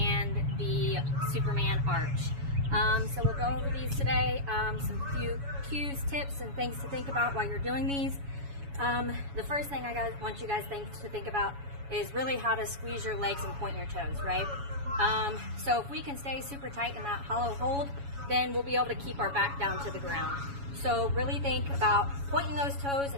the Superman arch. So we'll go over these today, some few cues, tips, and things to think about while you're doing these. The first thing I want you guys to think about is really how to squeeze your legs and point your toes, right? So if we can stay super tight in that hollow hold, then we'll be able to keep our back down to the ground. So really think about pointing those toes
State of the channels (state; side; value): late; left; 7.1 ms